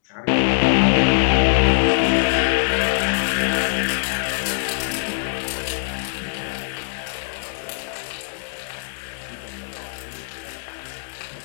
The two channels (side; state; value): right; silent; digital silence